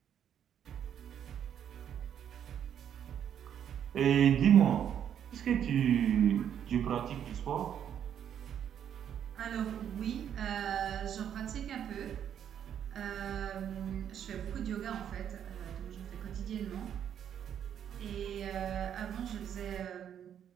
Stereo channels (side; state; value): left; quieter; 9.2 dB